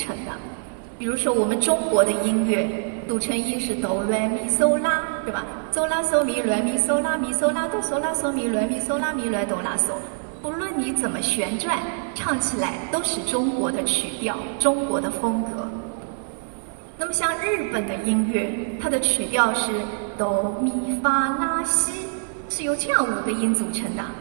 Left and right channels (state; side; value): silent; left; 59 dB below the other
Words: 的。比如说我们中国的音乐组成音是哆来咪嗦拉，对吧？嗦拉嗦咪来咪嗦拉咪嗦拉哆嗦拉嗦咪来咪嗦拉咪来哆拉嗦。不论你怎么旋转，唱起来都是中国的曲调，中国的风格。那么像日本的音乐，它的曲调是哆咪发拉西，是由这样5个音组成的。